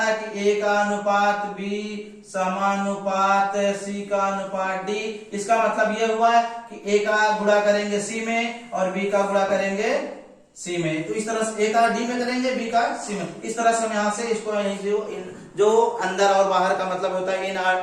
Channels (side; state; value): both; identical; correlation 1.00